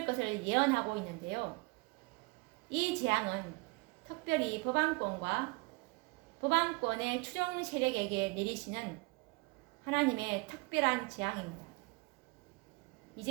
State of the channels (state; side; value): quieter; left; 26.6 dB